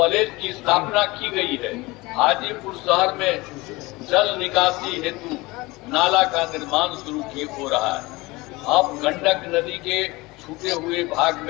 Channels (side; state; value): right; quieter; 22.2 dB